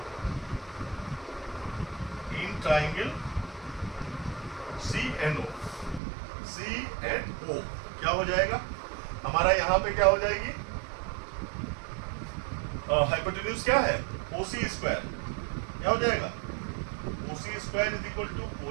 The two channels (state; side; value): drops out; left; at 6.0 s